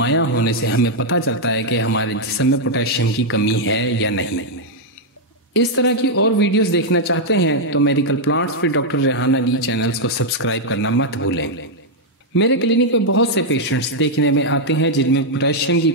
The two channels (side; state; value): both; normal; correlation -0.03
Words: होने से हमें पता चलता है कि हमारे जिस्म में पोटेशियम की कमी है या नहीं। इस तरह की और वीडियोस देखना चाहते हैं तो मेडिकल प्लांट्स फिर डॉक्टर रेहान अली चैनल्स को सब्सक्राइब करना मत भूलें। मेरे क्लिनिक में बहुत से पेशेंट्स देखने में आते हैं जिनमें पोटेशियम की